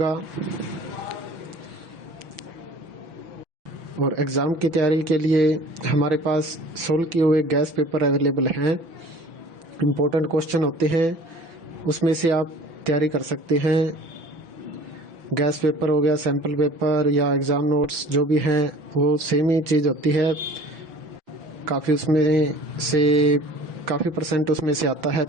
और एग्ज़ाम की तैयारी के लिए हमारे पास सोल्व किए हुए गैस पेपर अवेलेबल हैं। इम्पोर्टेंट क्वेश्चन होते हैं, उसमें से आप तैयारी कर सकते हैं। गैस पेपर हो गया, सैम्पल पेपर या एग्ज़ाम नोट्स जो भी हैं वो सेम ही चीज़ होती है। काफ़ी उसमें से काफ़ी परसेंट उसमें से आता है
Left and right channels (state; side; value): late; left; 6.0 ms